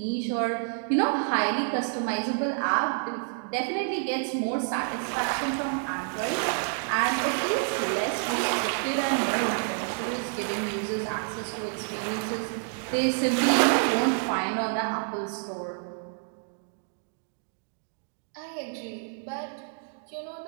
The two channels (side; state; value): left; silent; 59 dB below the other